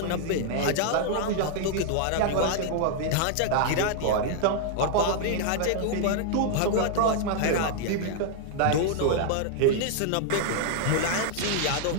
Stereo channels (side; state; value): both; different; correlation 0.00